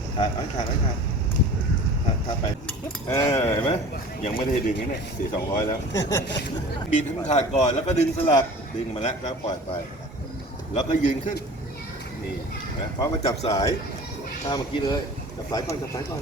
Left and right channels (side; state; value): both; normal; correlation 0.41